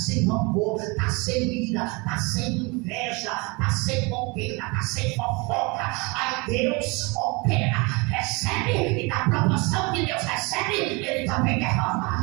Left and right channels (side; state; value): left; quieter; 27.8 dB